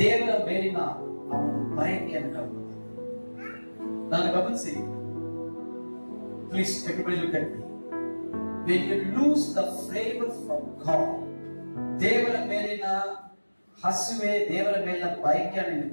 ಮೇಲಿನ ಅವನು ಬಯಕೆಯನ್ನು ಕಳ್ಕೊಂಡ. ನಾನು ಗಮನಿಸಿ, please everybody look at me. when you lose the flavor from God, ದೇವರ ಮೇಲಿನ ಹಸಿವೆ, ದೇವರ ಮೇಲಿನ ಬಯಕೆಯನ್ನು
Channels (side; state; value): both; inverted; correlation -1.00